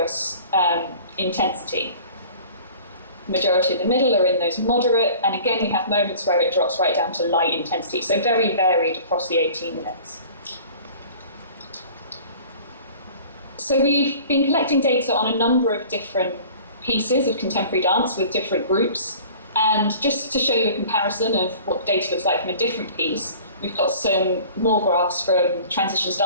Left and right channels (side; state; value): both; inverted; correlation -0.45